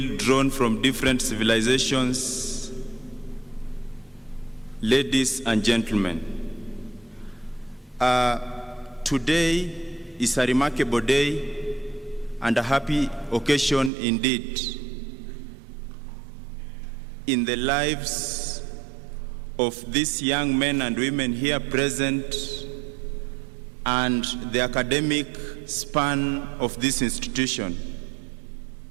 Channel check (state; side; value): drops out; left; at 13.9 s